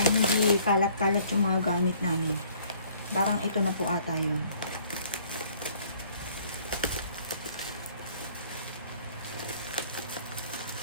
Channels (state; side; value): inverted; both; correlation -0.58